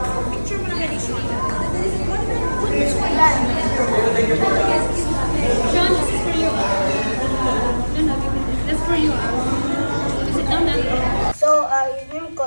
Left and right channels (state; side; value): inverted; both; correlation -1.00